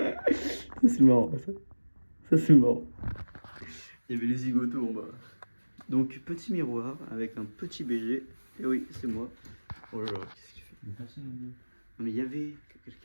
Ça c'est marrant, ça. Ça c'est marrant. Il y avait les zigotos en bas. Donc petit miroir avec un petit BG. Et oui, c'est moi. Oh là là, qu'est-ce qu'il fait? Mais personne ne veut. Non mais il y avait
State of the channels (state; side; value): inverted; both; correlation -1.00